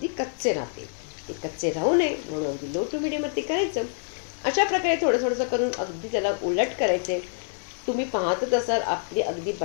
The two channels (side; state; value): right; silent; 61 dB below the other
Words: कच्चे राहतील. ते कच्चे राहू नये म्हणून अगदी लो टू मीडियमवरती करायचं. अशा प्रकारे थोडं थोडंसं करून अगदी त्याला उलट करायचे. तुम्ही पाहतच असाल आपली अगदी